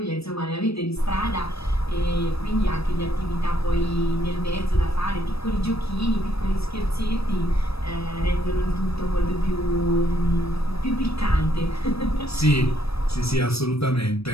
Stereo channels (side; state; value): right; late; 0.78 ms